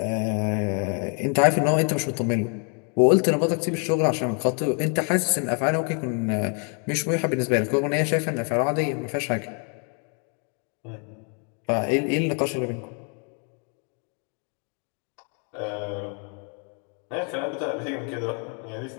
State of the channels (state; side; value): quieter; right; 39.5 dB